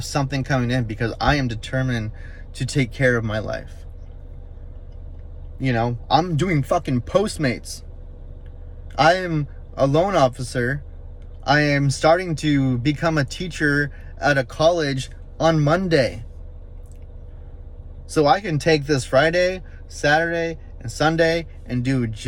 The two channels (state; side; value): identical; both; correlation 1.00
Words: something coming in? Because I am determined to take care of my life. You know, I'm doing fucking Postmates. I am a loan officer. I am starting to become a teacher at a college on Monday. So I can take this Friday, Saturday, and Sunday and do